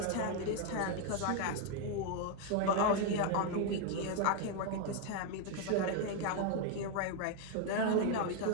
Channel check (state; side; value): different; both; correlation 0.01